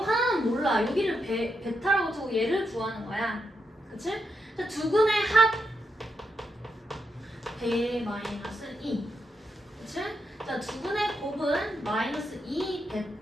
몰라. 여기를 베타라고 두고 얘를 구하는 거야. 그치? 자, 두 근의 합 배 마이너스 2. 그치? 자, 두 근의 곱은 마이너스 2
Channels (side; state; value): both; normal; correlation 0.80